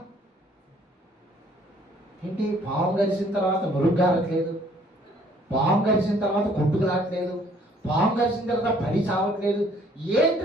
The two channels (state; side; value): normal; both; correlation 0.60